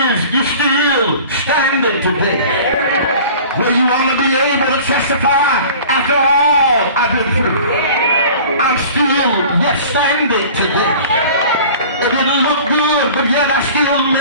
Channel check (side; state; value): both; inverted; correlation -0.43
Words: you're still standing today. Where you want to be able to testify after all I've been through. I'm still yet standing today. It didn't look good, but yet I still